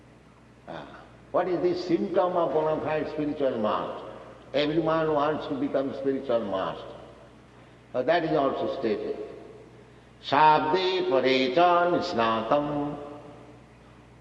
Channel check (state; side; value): identical; both; correlation 1.00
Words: What is the symptom of bona fide spiritual master? Everyone wants to become spiritual master. That is also stated. Shabde parecha nisnatam.